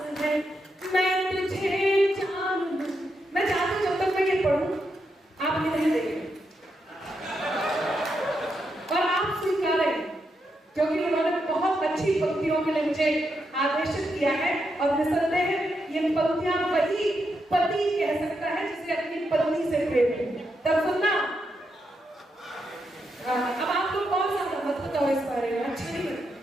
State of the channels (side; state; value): both; normal; correlation 0.83